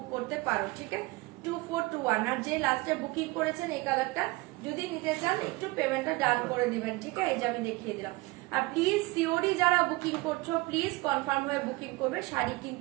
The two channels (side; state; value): left; quieter; 22.9 dB